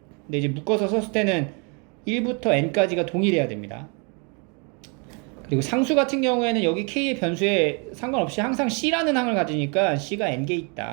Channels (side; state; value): left; quieter; 34.9 dB